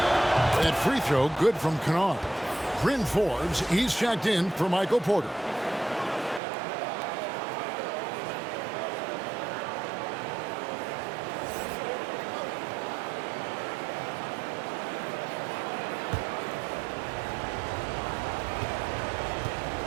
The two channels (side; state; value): left; drops out; at 6.4 s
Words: Free throw good from Kennard. Bryn Forbes, he's checked in for Michael Porter.